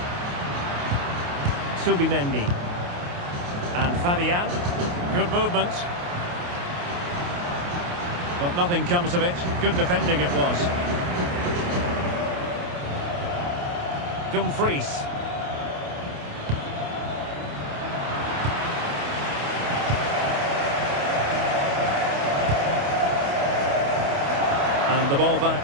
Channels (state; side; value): late; left; 28 ms